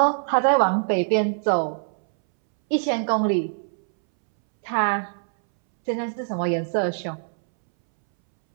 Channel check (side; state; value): left; silent; 63 dB below the other